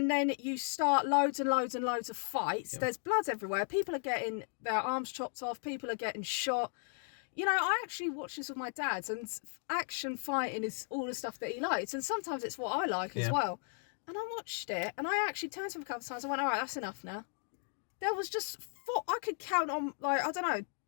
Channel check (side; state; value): right; silent; 54 dB below the other